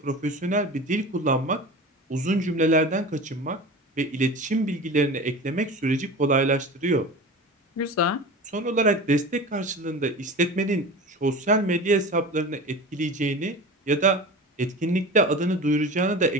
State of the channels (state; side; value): normal; both; correlation 0.33